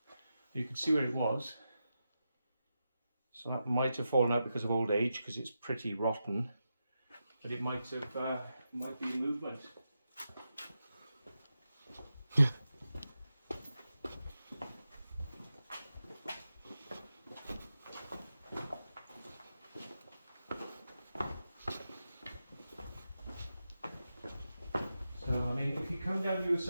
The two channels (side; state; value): both; inverted; correlation -0.89